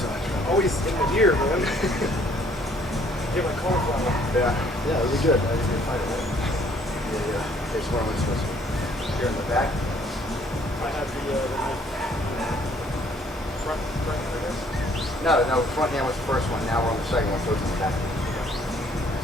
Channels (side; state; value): both; normal; correlation 0.62